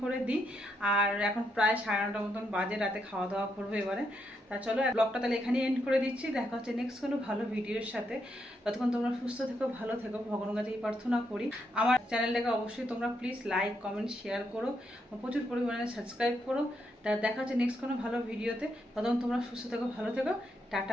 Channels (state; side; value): normal; both; correlation 0.79